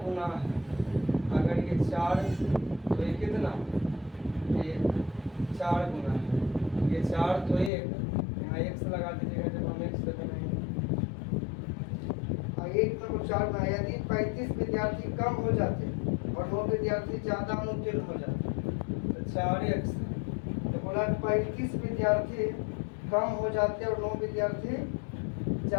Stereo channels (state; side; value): drops out; right; at 7.7 s